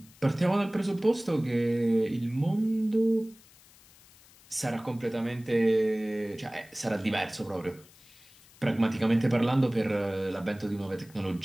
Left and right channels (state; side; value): noise; left; hiss, 25 dB below the sound